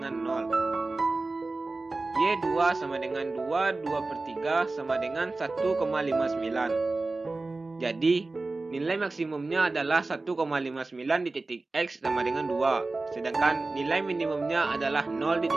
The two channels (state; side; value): quieter; left; 3.3 dB